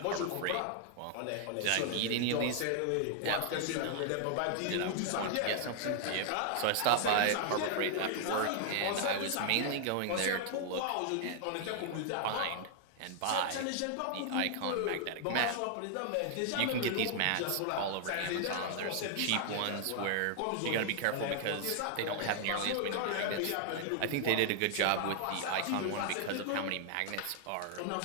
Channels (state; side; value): different; both; correlation 0.00